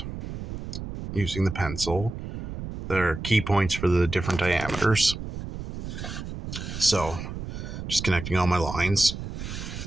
using the pencil. There are key points for the different diameters. So just connecting all my lines.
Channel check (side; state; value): right; noise; rumble, 8 dB below the sound